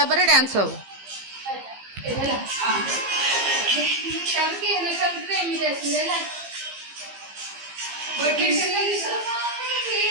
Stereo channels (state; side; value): late; left; 15 ms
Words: ପରେ ଡ୍ୟାନ୍ସ ହବ।